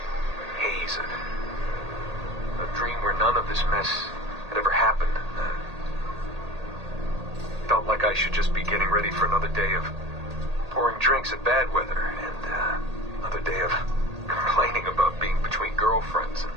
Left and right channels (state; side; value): late; left; 1.8 ms